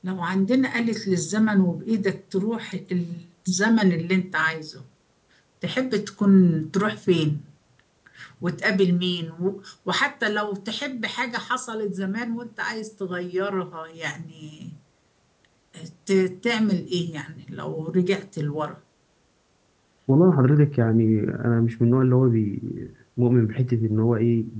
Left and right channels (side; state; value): both; identical; correlation 1.00